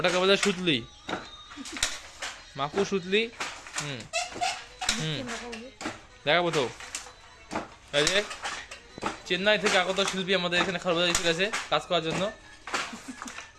বলে সুতলি মাকু সুতলি দেখাবো তো এই যে চেন্নাই থেকে আগত শিল্পী আমাদের এখানে খারবাজারে এসে গেছে কাজ করার জন্য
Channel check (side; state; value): both; identical; correlation 1.00